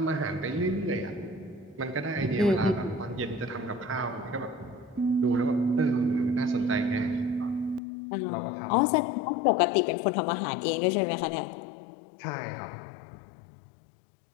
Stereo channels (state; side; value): drops out; right; at 7.8 s